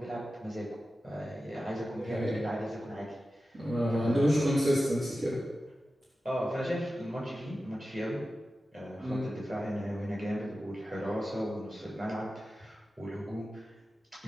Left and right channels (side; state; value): both; normal; correlation 0.94